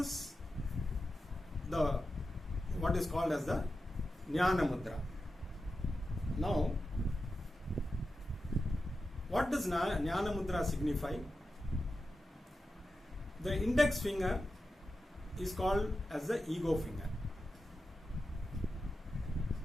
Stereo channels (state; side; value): normal; both; correlation 0.91